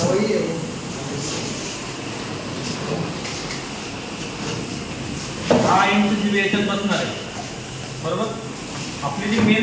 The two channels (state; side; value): identical; both; correlation 1.00